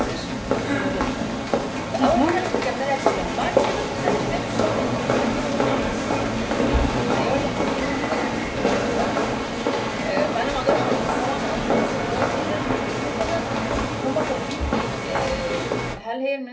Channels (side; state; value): both; identical; correlation 1.00